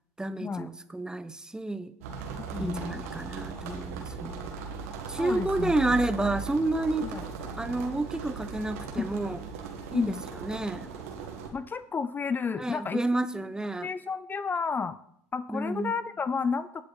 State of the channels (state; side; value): normal; both; correlation 0.78